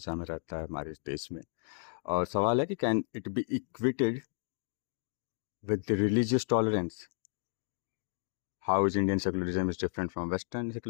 में रहता है हमारे इस देश में। और सवाल है कि can it be equated with the religious tolerance? How is Indian secularism is different from western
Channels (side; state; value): right; silent; digital silence